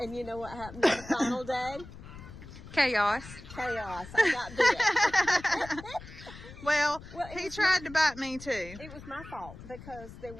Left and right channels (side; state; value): left; noise; rumble, 16 dB below the sound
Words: you know what happened on the final day? Chaos. Chaos. I got bit. Well, he tried to bite me too. It was my fault because there